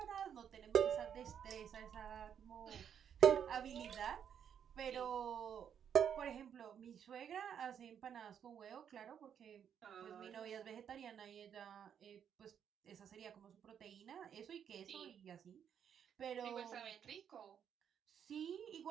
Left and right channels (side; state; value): left; quieter; 8.4 dB